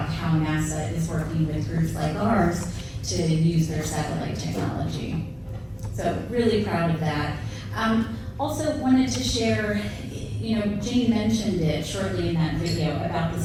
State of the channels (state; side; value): identical; both; correlation 1.00